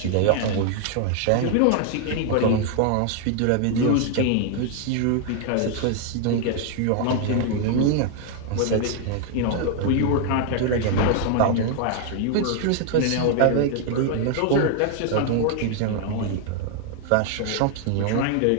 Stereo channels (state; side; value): different; both; correlation 0.00